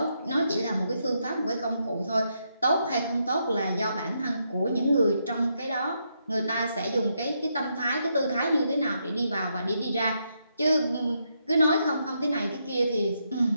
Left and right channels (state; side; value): inverted; both; correlation -0.80